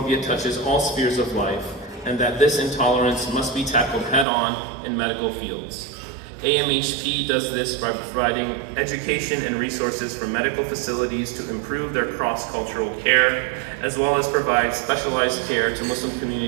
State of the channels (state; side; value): drops out; left; at 4.2 s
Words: touches all spheres of life and that this intolerance must be tackled head-on in medical fields. AMHP does this by providing education and resources for medical facilities to improve their cross-cultural care, as well as provide specialized care to Muslim